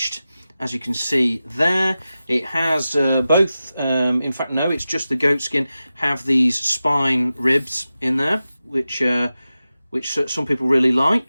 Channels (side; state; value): both; inverted; correlation -0.94